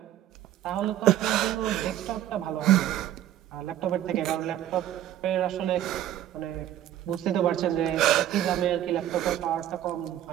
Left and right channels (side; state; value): left; quieter; 12.2 dB